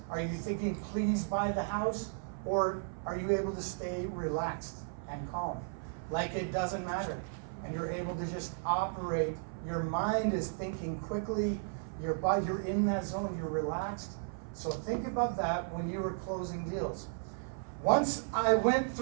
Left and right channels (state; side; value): silent; left; 55 dB below the other